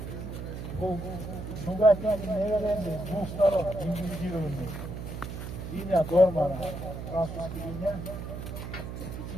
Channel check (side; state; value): right; noise; hum, 7 dB below the sound